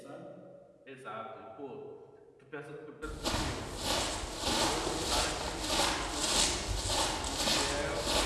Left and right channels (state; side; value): identical; both; correlation 1.00